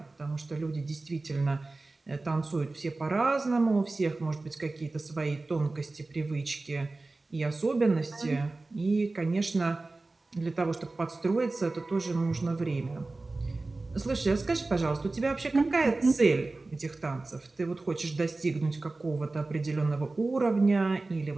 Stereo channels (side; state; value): left; quieter; 3.3 dB